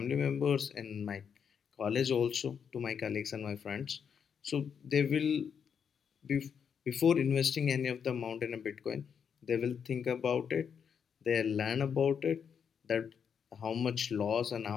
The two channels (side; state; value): right; quieter; 7.1 dB